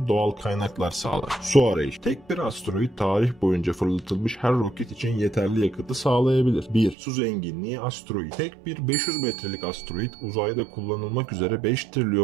doğal kaynaklar sağlar. Su arayışı. Tek bir asteroid tarih boyunca fırlatılmış her roket için yeterli yakıtı sağlayabilir. 1. Su zenginliği asteroid. Tek bir 500 metrelik asteroid uzayda kullanılmak üzere 5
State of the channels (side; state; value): left; drops out; at 7.0 s